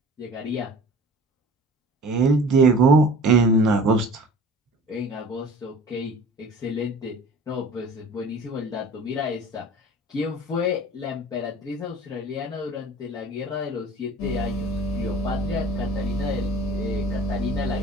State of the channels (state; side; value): normal; both; correlation 0.43